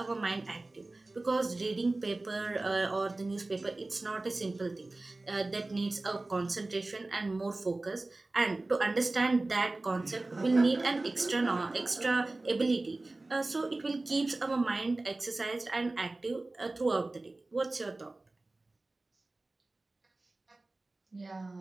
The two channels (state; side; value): quieter; left; 3.0 dB